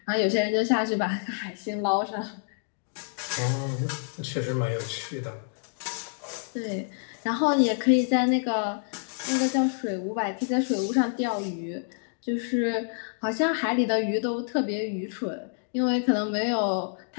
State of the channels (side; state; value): right; silent; digital silence